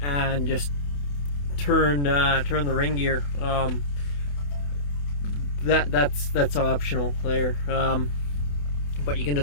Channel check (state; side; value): late; right; 28 ms